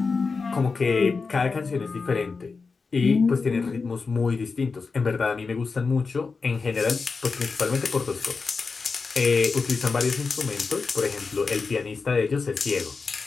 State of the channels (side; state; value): right; quieter; 4.5 dB